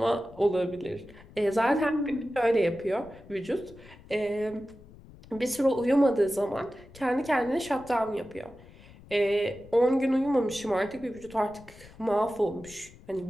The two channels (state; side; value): noise; left; rumble, 21 dB below the sound